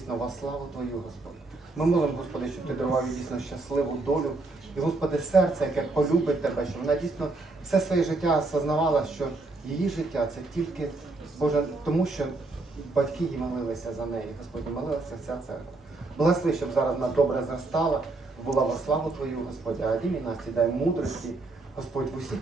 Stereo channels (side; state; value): left; quieter; 3.3 dB